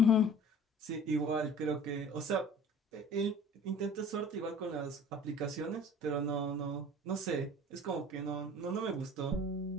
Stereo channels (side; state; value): both; normal; correlation 0.45